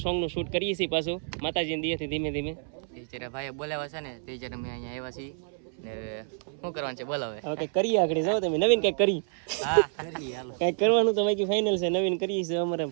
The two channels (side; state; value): left; silent; 59 dB below the other